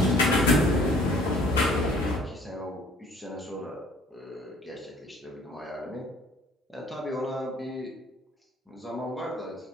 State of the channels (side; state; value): both; normal; correlation 0.55